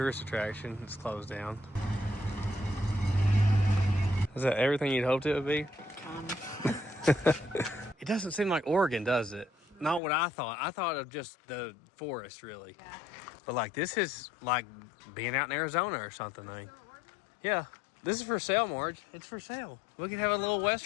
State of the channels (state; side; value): drops out; right; at 10.0 s